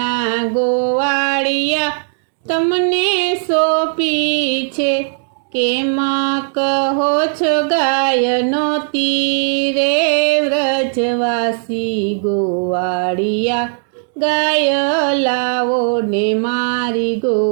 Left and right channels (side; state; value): left; silent; 60 dB below the other